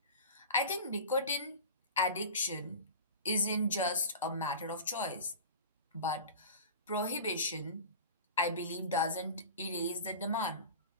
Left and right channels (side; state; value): both; inverted; correlation -0.34